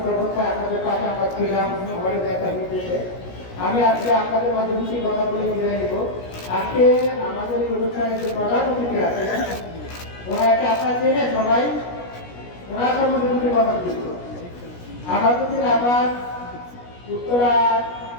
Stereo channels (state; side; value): late; right; 17 ms